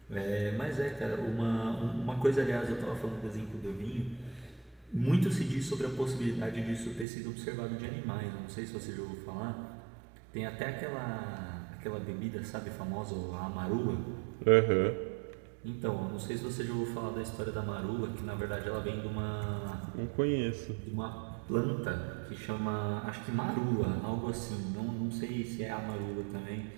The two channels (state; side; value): drops out; left; at 7.1 s